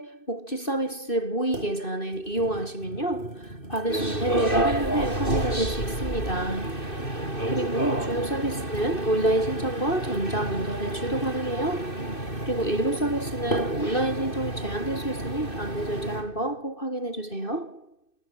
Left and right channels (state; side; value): late; right; 2.6 ms